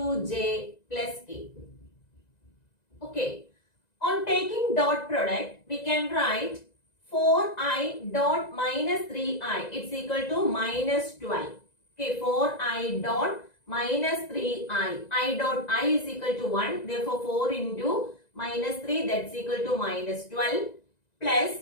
plus K. Okay. On taking dot product, we can write 4I dot minus 3I. It's equal to minus 12. Okay, 4I dot minus 3I. I dot I is equal to 1. Therefore, 4 into minus 3, that's equal to minus 12 plus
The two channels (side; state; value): right; late; 1.9 ms